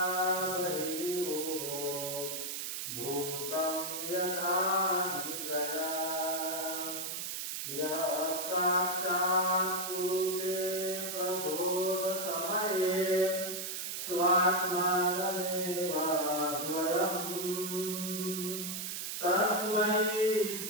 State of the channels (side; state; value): right; noise; hiss, 4 dB below the sound